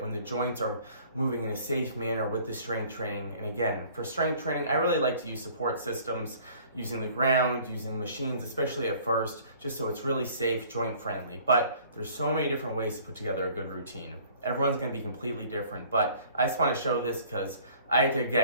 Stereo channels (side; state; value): both; inverted; correlation -0.53